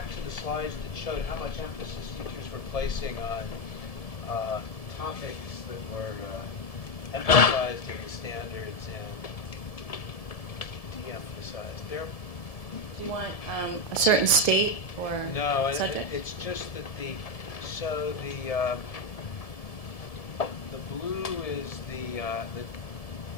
to the slides that showed how much emphasis teachers were placing on topics that were emphasized in the standards and de-emphasized. Do you want a certain state or No, subject? it's just that the blue is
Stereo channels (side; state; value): right; late; 1.7 ms